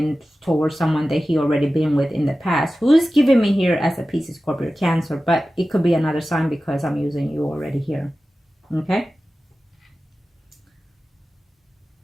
towards someone that he already been with in the past. Who's giving me here as a Pisces, Scorpio, Cancer, but it could be another sign because I'm using you already here. Okay.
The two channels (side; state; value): both; normal; correlation 0.95